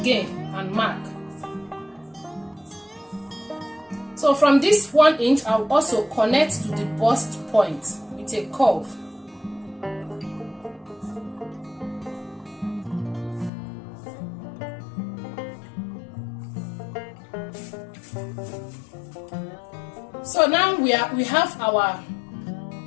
and mark. So So from this 1 inch, I'll also connect to the bust point with a curve. So now we have our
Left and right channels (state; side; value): drops out; right; at 13.5 s